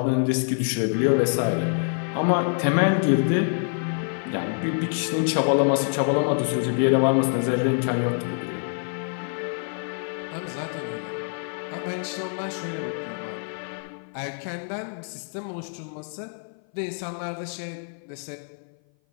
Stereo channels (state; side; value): silent; right; 57 dB below the other